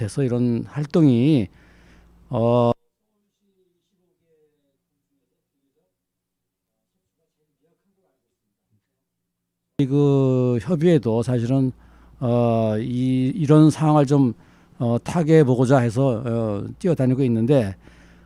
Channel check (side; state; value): both; identical; correlation 1.00